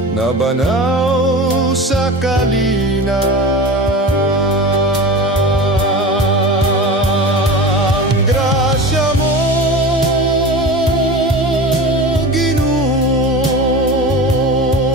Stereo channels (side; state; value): both; normal; correlation 0.31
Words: nabanaw sa kalina. Ang grasya mo, Ginoo,